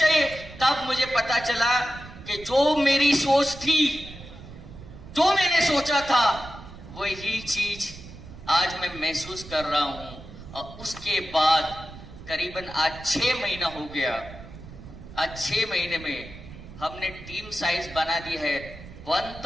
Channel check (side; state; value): right; noise; rumble, 15 dB below the sound